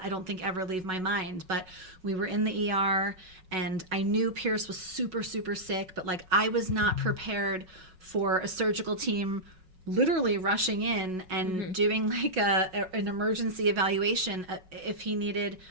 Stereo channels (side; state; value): left; late; 5.4 ms